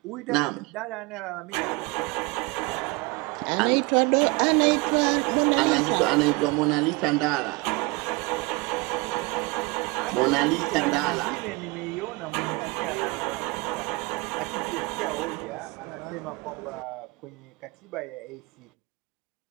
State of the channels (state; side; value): quieter; left; 24.9 dB